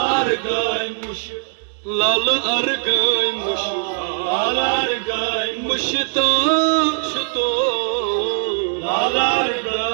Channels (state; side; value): silent; left; 66 dB below the other